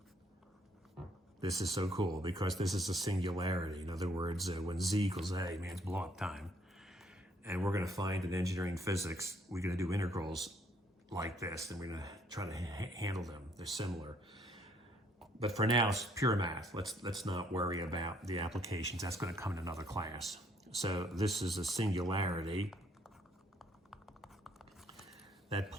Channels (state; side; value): normal; both; correlation 0.66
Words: This is so cool because this is a singularity. In other words, when z equals a means blow up time. And we're going to find in engineering physics, we're going to do integrals like this, and we're going to try to handle them. They're similar. But for now, it's pure math. Let's not worry about the applications. That's going to come in another class. So this is a singularity. That